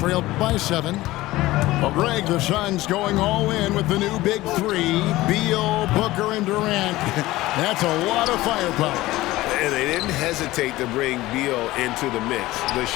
by 7. Greg, the Suns going all in with the new big 3. Beal, Booker, and Durant. That's a lot of firepower. And they didn't hesitate to bring Beal into the mix. The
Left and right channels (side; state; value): right; quieter; 17.8 dB